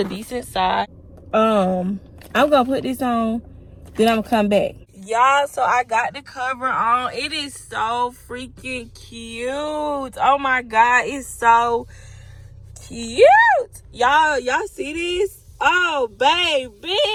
decent size. I'm gonna put this on, then I'm gonna come back. Y'all, so I got the cover on. It is so freaking cute. Oh my God, it's so cute. Y'all see this? Oh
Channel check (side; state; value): both; identical; correlation 1.00